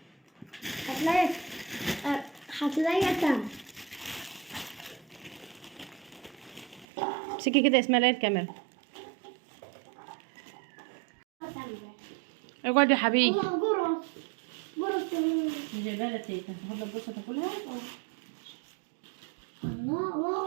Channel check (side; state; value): left; drops out; at 6.9 s